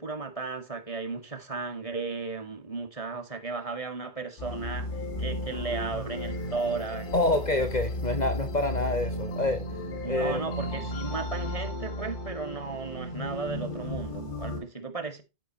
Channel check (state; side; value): late; right; 2.0 ms